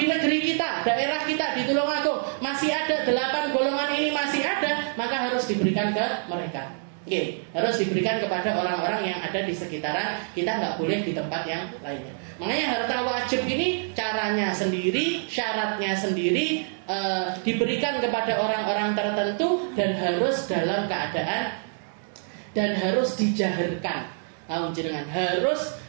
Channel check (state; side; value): silent; left; 61 dB below the other